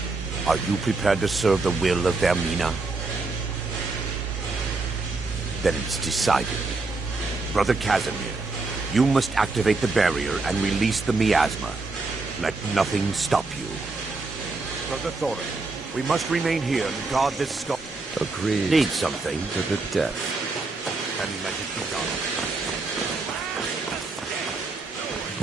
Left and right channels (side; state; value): left; quieter; 3.6 dB